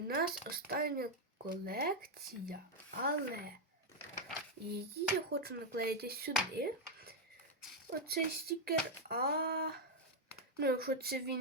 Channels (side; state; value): both; normal; correlation 0.01